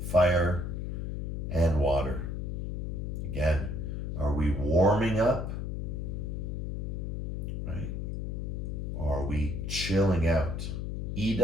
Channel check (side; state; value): left; noise; hum, 3 dB below the sound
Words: fire and water. Again, are we warming up, right? Or are we chilling out?